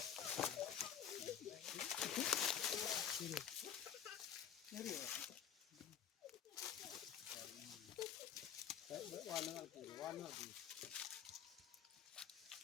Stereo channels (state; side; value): quieter; right; 8.9 dB